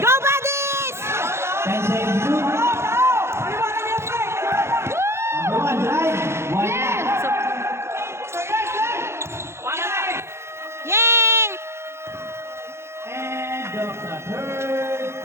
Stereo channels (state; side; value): late; left; 0.13 ms